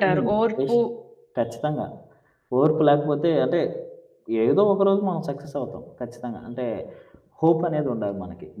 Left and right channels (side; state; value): both; identical; correlation 1.00